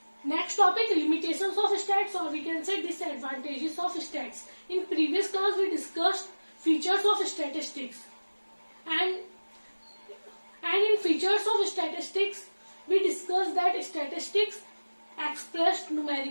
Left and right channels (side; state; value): both; inverted; correlation -1.00